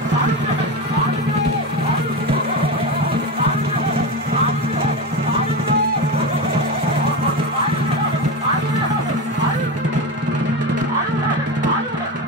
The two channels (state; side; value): normal; both; correlation 0.20